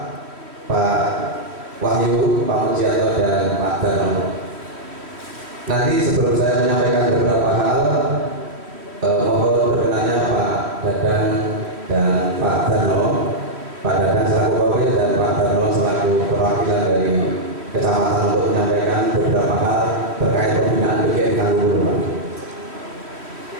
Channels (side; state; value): left; late; 3.1 ms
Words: Wahyu, Pak Mujianto dan Pak Darno. Nanti sebelum saya menyampaikan beberapa hal, mohon berkenannya Pak Dadang dan Pak Darno, Pak Dadang selaku Wakil dan Pak Darno selaku perwakilan dari kecamatan untuk menyampaikan beberapa hal terkait pembinaan PGRI Tanggung.